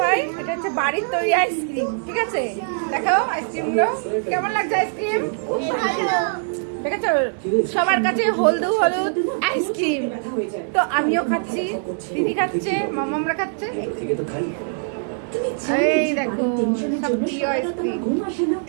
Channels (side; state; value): left; silent; 60 dB below the other